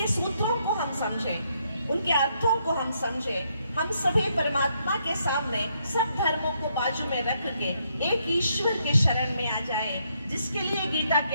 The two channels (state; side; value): inverted; both; correlation -0.75